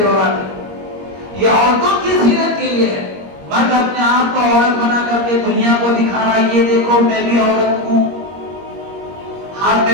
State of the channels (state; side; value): late; left; 21 ms